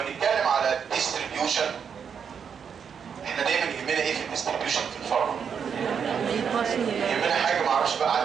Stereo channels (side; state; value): left; quieter; 7.1 dB